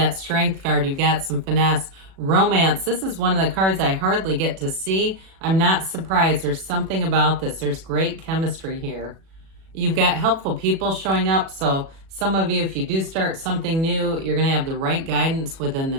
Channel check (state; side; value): late; left; 37 ms